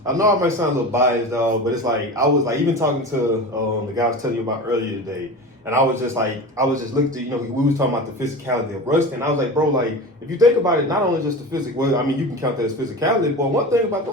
I know I might sound a little biased, dog, but it's like, I was like, even talking to the guy I was telling you about earlier today, and I was just looking at, we was talking about the physicality of Ruston. I was like, bro, like, if you think about it, not only just the physical, well, I mean, you can count that as physicality, but one thing about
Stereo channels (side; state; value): both; normal; correlation 0.30